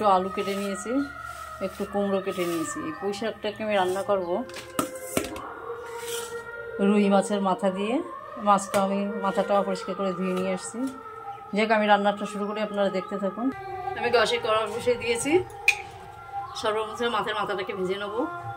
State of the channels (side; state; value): both; identical; correlation 1.00